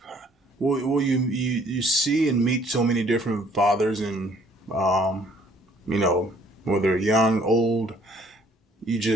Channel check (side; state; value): both; normal; correlation 0.60